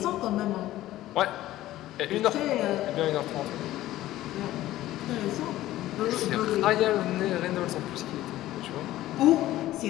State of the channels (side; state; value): right; quieter; 15.1 dB